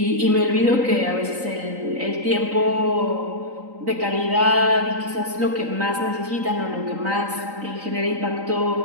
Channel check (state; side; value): late; left; 3.9 ms